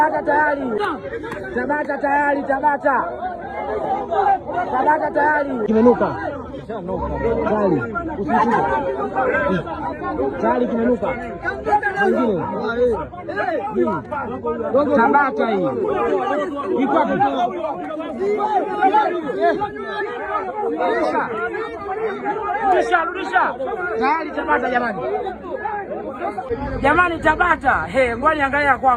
tayari, Tabata tayari, Tabata tayari, kimenuka tayari, usishike tayari, kimenuka mwingine Tabata hii iko rudisha tayari, Tabata jamani, Tabata ngoja angalia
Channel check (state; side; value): identical; both; correlation 1.00